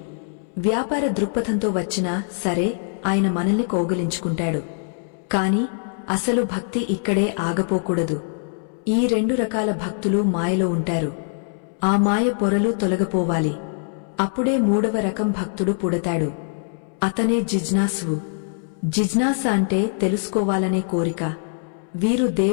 వ్యాపార దృక్పథంతో వచ్చినా సరే ఆయన మనల్ని కౌగిలించుకుంటాడు. కాని అసలు భక్తి ఇక్కడే ఆగపోకూడదు. ఈ 2 రకాల భక్తులు మాయలో ఉంటారు. ఆ మాయ పొరలు తొలగపోవాలి. అప్పుడే 3వ రకం భక్తుడు పుడతాడు. అతనే జిజ్ఞాసువు. జిజ్ఞాస అంటే తెలుసుకోవాలనే కోరిక. వీరు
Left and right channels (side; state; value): right; silent; 64 dB below the other